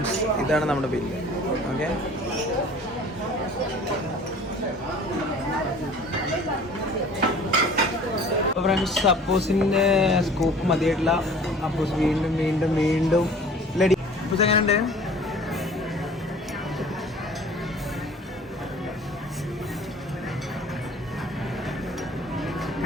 ഇതാണ് നമ്മുടെ ബില്ല്. ഓക്കെ, അപ്പോൾ ഫ്രണ്ട്സ് അപ്പൂസിൻ്റെ സ്കൂപ്പ് മതിയായിട്ടില്ല. അപ്പൂസ് വീണ്ടും വീണ്ടും വീണ്ടും ലഡി. അപ്പൂസ് എങ്ങനെയുണ്ട്?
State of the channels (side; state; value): both; normal; correlation 0.47